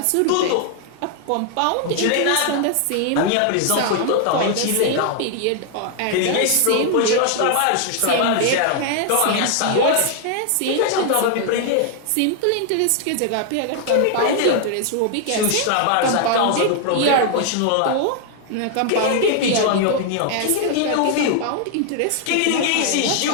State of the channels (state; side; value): different; both; correlation 0.00